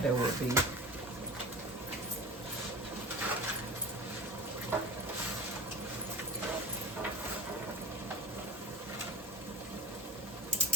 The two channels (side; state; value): both; normal; correlation 0.35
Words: there would be.